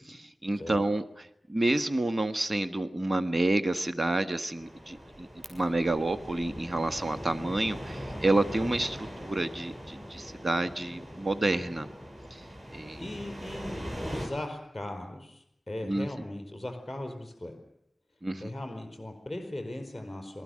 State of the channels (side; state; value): both; normal; correlation 0.96